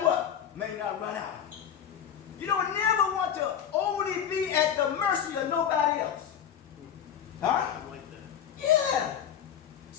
what? May not run out. You don't never want to only be at the mercy of nobody else. Huh? I like that. Yeah.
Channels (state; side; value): quieter; right; 8.9 dB